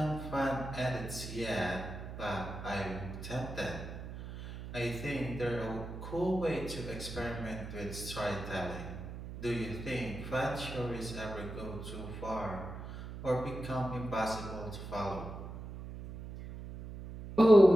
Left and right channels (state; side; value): noise; right; hum, 10 dB below the sound